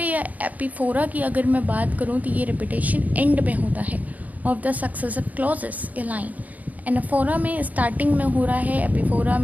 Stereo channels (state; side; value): late; left; 0.077 ms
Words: या एपिफोरा की अगर मैं बात करूँ तो ये रिपीटेशन एंड में होता है of the successive clauses A line. Anaphora में स्टार्टिंग में हो रहा है, एपिफोरा